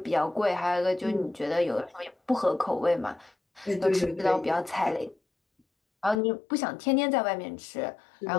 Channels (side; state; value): right; drops out; at 6.2 s